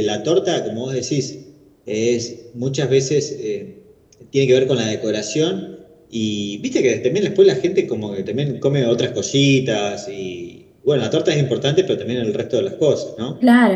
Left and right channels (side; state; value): both; identical; correlation 1.00